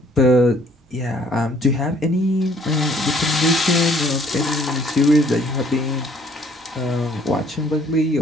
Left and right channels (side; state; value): both; normal; correlation 0.60